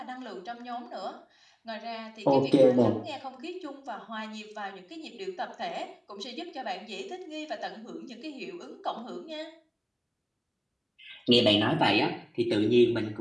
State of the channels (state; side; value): identical; both; correlation 1.00